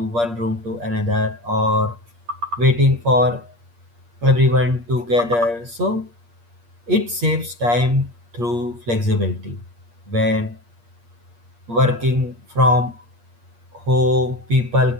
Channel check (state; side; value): late; left; 8.5 ms